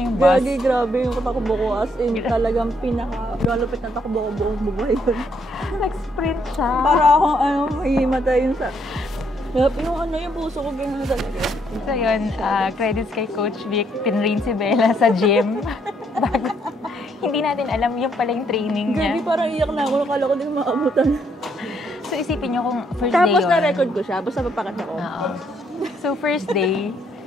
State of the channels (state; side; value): normal; both; correlation 0.72